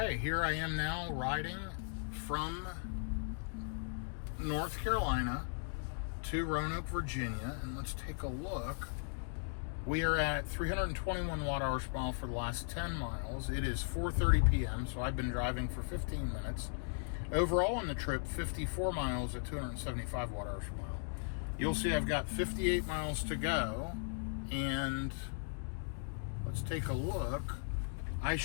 here I am now riding from North Carolina to Roanoke, Virginia, and let's take a look. We are at 321 watt-hours per mile for the last 10 miles. It is 4:30 p.m., so I've been driving for 15 minutes. Overall on the trip, 54 miles at 275 watt-hours per mile. You'll see I've got 58 miles to go, and let's take a look. I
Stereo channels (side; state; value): right; silent; digital silence